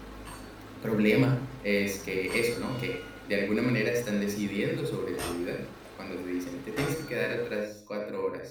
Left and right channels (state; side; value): identical; both; correlation 1.00